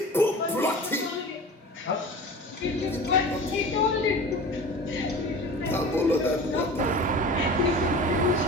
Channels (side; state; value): both; normal; correlation 0.36